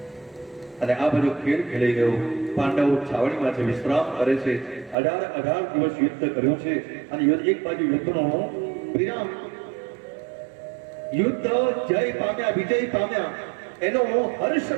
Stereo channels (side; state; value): left; drops out; at 5.0 s